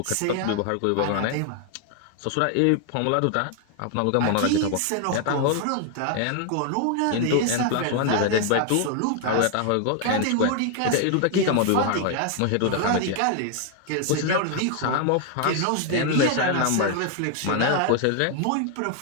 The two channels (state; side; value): different; both; correlation 0.00